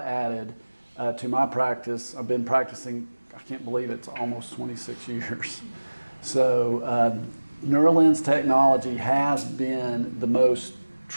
added to my practice. I've been practicing, I can't believe it's almost 26 years. So Neurolens technology has been the most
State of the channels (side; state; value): both; inverted; correlation -1.00